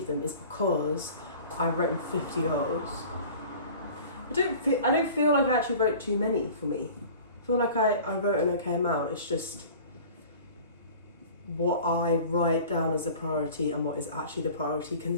them is because I've written 50 goals. I don't feel like I actually wrote too many for me. I feel like I wrote an okay amount. It's just what I write down as a priority and what is actually the priority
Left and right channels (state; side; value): inverted; both; correlation -0.43